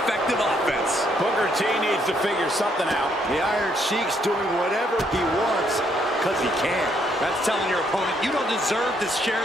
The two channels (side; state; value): both; normal; correlation 0.71